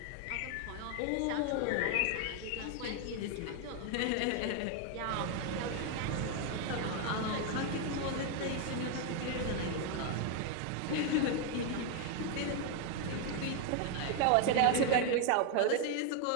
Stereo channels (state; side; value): different; both; correlation 0.01